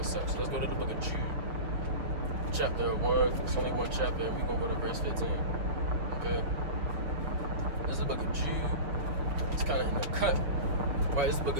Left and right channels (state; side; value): late; left; 6.8 ms